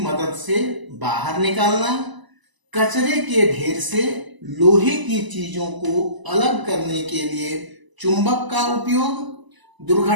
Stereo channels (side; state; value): left; late; 1.0 ms